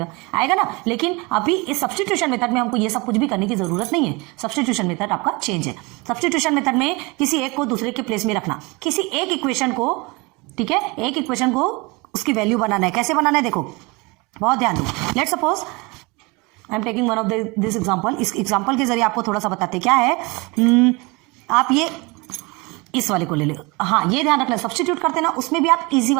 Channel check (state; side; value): quieter; left; 26.2 dB